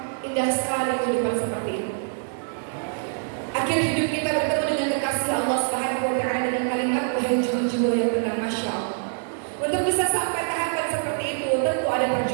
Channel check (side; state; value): left; silent; digital silence